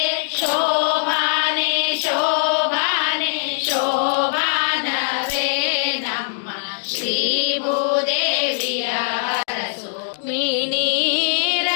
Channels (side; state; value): right; silent; digital silence